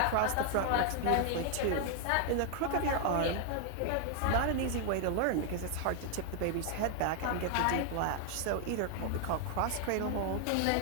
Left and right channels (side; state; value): both; different; correlation 0.00